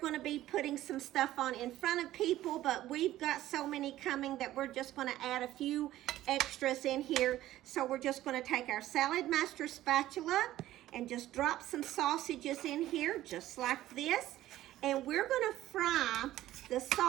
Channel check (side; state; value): left; quieter; 14.4 dB